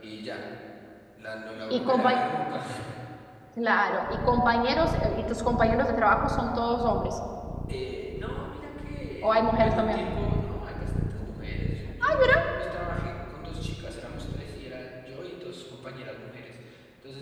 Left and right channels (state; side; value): identical; both; correlation 1.00